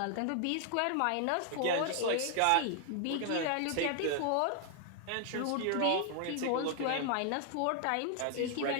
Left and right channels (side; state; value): both; different; correlation 0.00